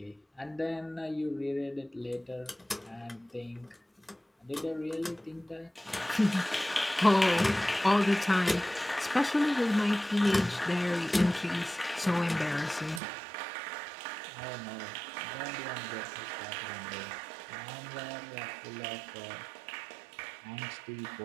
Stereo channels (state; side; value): drops out; left; at 13.0 s